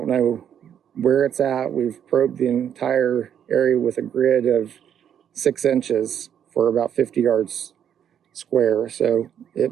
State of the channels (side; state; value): left; quieter; 9.2 dB